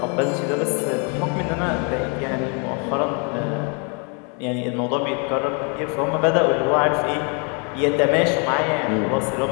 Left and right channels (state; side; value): quieter; right; 36.2 dB